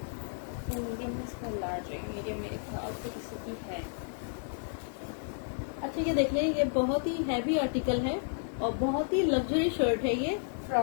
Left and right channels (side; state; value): right; silent; digital silence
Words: मीडियम में इसका लार्ज है, मीडियम मेरे ख्याल से किसी की है। अच्छा ये देख लें, ये बहुत ही हैवी आर्टिकल है और बहुत ही लग्जरी शर्ट है। ये